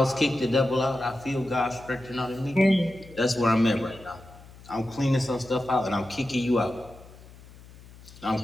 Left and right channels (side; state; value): left; noise; hum, 20 dB below the sound